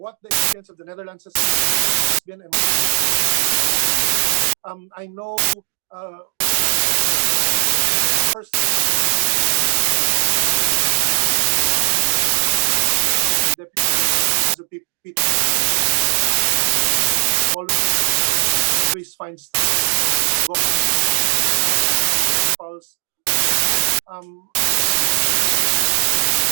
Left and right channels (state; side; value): silent; left; digital silence